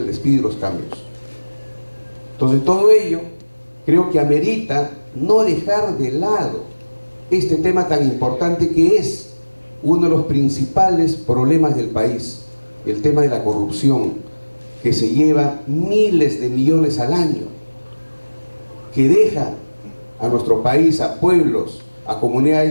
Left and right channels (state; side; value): inverted; both; correlation -1.00